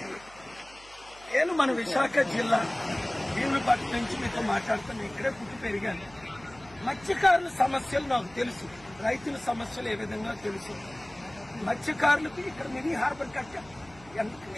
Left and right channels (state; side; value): noise; right; hum, 23 dB below the sound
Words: నేను మన విశాఖ జిల్లా భీములపట్నం నుంచి మీతో మాట్లాడుతాను. ఇక్కడే పుట్టి పెరిగాను. మత్స్యకారుల సమస్యలు నాకు తెలుసు, రైతుల సమస్యలు ఏ విధంగా తెలుసు. మత్స్యకారులకు ఇక్కడ మినీ హార్బర్ కట్టారు.